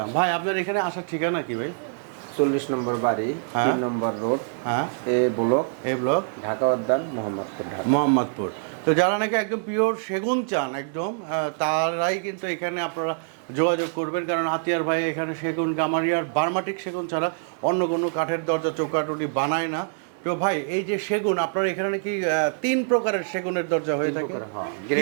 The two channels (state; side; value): silent; left; 62 dB below the other